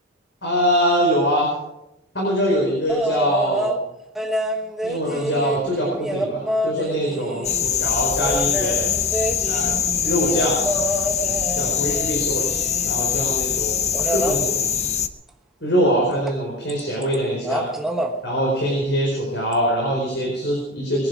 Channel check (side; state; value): both; normal; correlation 0.25